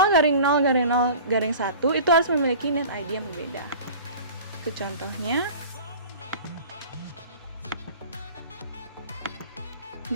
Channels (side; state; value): both; inverted; correlation -0.41